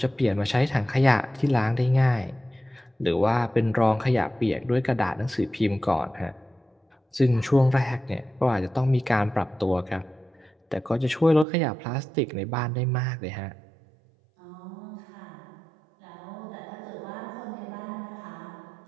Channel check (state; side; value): drops out; left; at 11.5 s